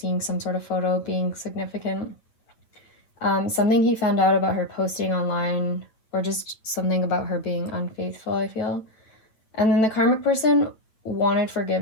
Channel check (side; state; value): right; late; 9.4 ms